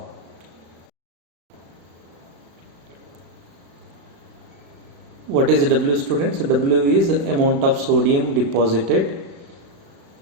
What is W, students? W is amount of sodium deposited.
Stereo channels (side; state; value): left; late; 36 ms